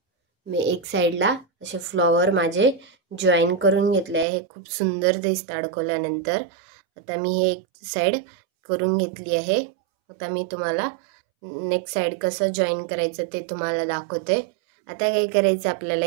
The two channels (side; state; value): left; drops out; at 4.2 s